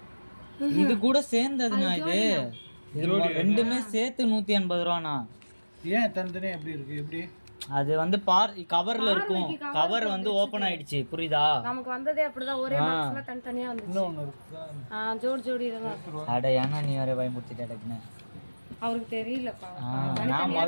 இது கூட சேர்ந்ததுண்ணா. இது ரெண்டுமே சேர்த்து 180 ரூபாண்ணா. ஏன் தனித்தனியாக எப்படி இருக்கு? எப்படி அது வந்து கவர்ல இருக்கும், கவர் வந்து ஓபன் ஆயிடுச்சு, புரியுதா? நமக்கு வந்ததே அப்படிதான், ஒரே பாக்ஸ்ல தனித்தனியா வந்துச்சு. இன்னொன்று இருக்கா? ஜோடி ஜோடி இதெல்லாம். அட ஏன்னா நீ வேற பயமுறுத்திட்ட டக்குன்னு. அவருக்கு தெரியலப்பா, நான்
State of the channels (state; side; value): inverted; both; correlation -1.00